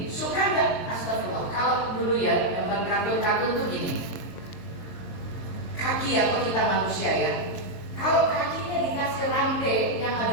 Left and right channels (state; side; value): late; right; 22 ms